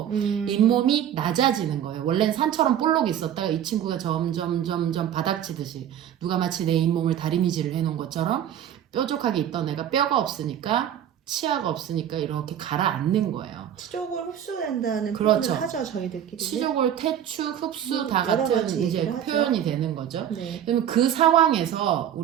잇몸이 낮아지는 거예요. 원래는 산처럼 볼록 있었다가 이 친구가 점점 바닥치듯이 누가 마치 내 잇몸을 다리미질을 해놓은 것처럼 뾰족하게 있던 애가 뼈가 없으니까 치아가 없으니까 이렇게 가라앉는 거예요. 치족을 흡수된다는 그렇죠. 표현을 하죠, 저희들끼리. 치족을 퇴축, 흡수 다 같은 이제 표현이 되는 거죠. 그러면 그 상황에서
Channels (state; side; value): quieter; left; 10.0 dB